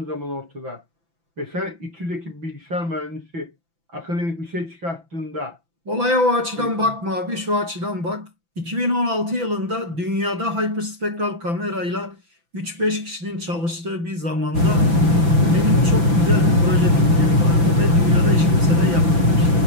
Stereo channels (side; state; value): left; late; 6.0 ms